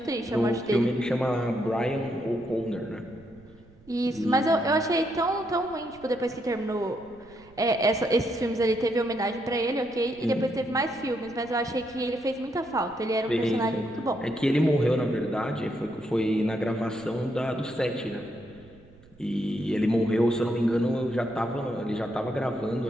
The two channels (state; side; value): noise; right; rumble, 25 dB below the sound